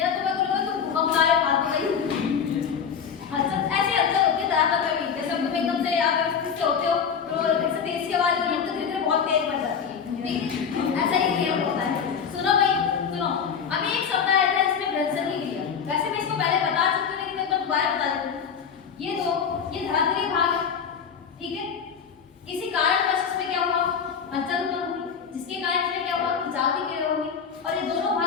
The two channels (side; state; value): right; quieter; 6.9 dB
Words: तुम्हें बोलोगे तुम भूकंप लाए फालतू भाई। हलचल ऐसी हलचल होती है धरातल में भी, जैसे तुम एकदम से अगर किससे होते हो तो ऐसे तेज की आवाज होती है तो धीरे धीरे बहुत तेज बढ़ जाती है, ठीक है? ऐसा ही क्रिया होता है। सुनो भाई, सुनो, अभी एक शब्द आया था इसमें घर्षण की क्रिया। वैसे मैं इसको पहले बता चुकी हूँ, लेकिन मैं दोबारा बता देती हूँ। ये धरातलीय भाग, ठीक है, किसी कारणवश इसमें क्या हुआ, हलचल उत्पन्न हुई, जिसके कारण इसमें क्या हुआ, खिंचाव की क्रिया होगी, और ये दोनों